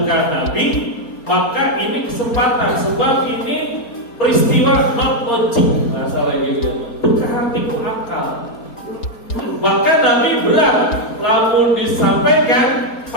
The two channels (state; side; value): late; right; 4.3 ms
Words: Nabi, maka ini kesempatan, sebab ini peristiwa not logic, masalah gitu, bukan tiku akal. Maka Nabi berat, lamun disampaikan